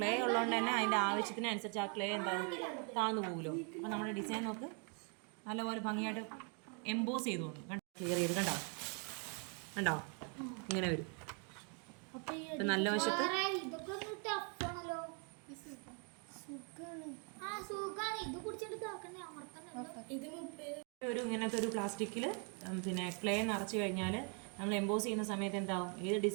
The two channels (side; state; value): left; quieter; 38.4 dB